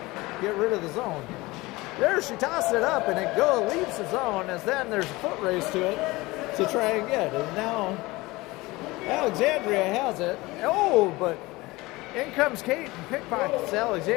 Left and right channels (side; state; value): right; quieter; 21.3 dB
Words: get rid of the zone. There she tosses it up, and it leaves the zone, as then there's a foot race to it to try and get. And now Alexandria has it. But in comes Kate and pickpockets